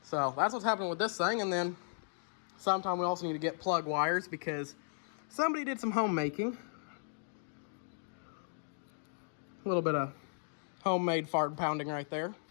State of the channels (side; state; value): right; silent; digital silence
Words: So that's what's happening with this thing. And then sometime we also need to get plug wires because somebody did some homemaking. A little bit of homemade fart pounding right there